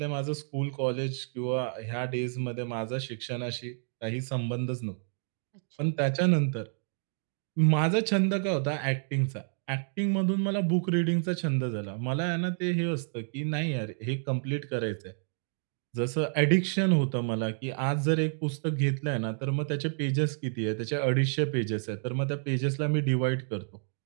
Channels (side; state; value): left; silent; digital silence